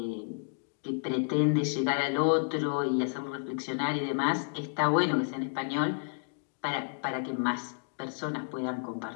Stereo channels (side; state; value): right; silent; digital silence